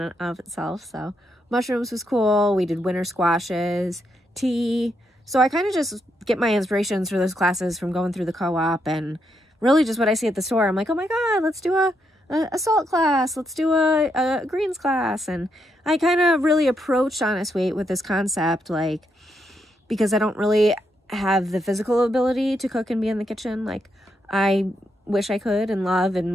of itself. So mushrooms was cool. We did winter squashes, tea. So I kind of just get my inspirations for those classes from going through the co-op and really just what I see at the store. I'm like, oh my God, let's do a salt class, let's do a greens class. And I kind of really approached Honest Weight with this concept, like, because I don't really have the physical ability to cook and be in the kitchen like I wish I could and love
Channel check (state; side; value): normal; both; correlation 0.79